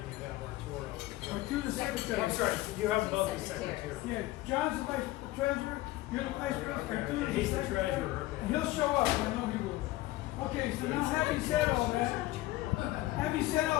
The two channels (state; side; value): quieter; right; 17.6 dB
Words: you have Arturo. Or to the secretary. I'm sorry, you have both the secretary. Yeah, John's the vice treasurer. You're the vice president. Okay, Tu's he's the secretary. treasurer, okay. And he'll show up. I know he will. Okay, so now having said all that,